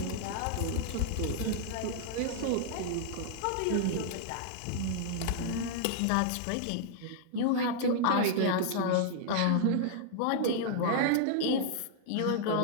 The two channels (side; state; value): both; different; correlation -0.01